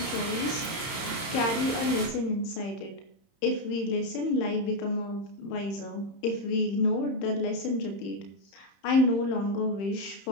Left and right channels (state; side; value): late; right; 30 ms